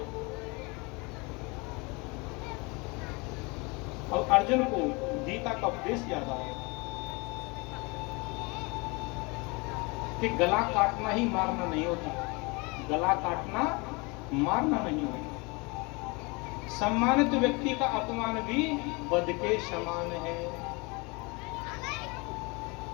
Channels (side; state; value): right; quieter; 27.9 dB